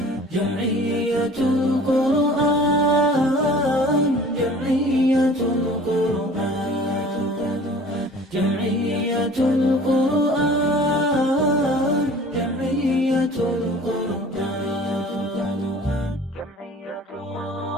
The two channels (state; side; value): normal; both; correlation 0.47